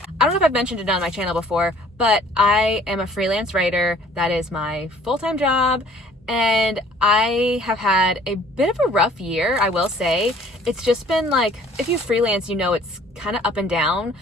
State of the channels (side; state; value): both; normal; correlation 0.55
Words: I don't know if I've mentioned it on my channel before, but I am a freelance writer. That is my full-time job. And I have had a bit of a rough year, I will say. It's just been like, if you freelance, you know it's kind of up and down